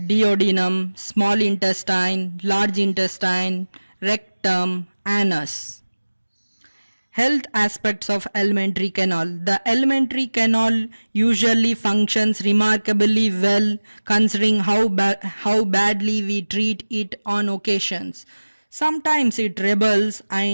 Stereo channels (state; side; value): inverted; both; correlation -1.00